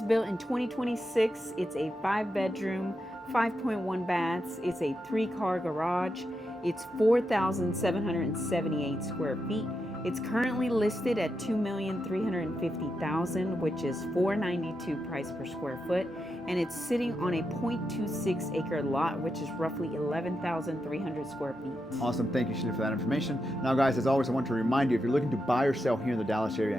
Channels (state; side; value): normal; both; correlation 0.86